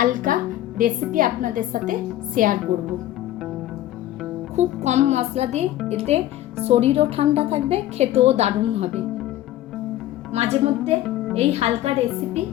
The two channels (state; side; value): quieter; right; 13.9 dB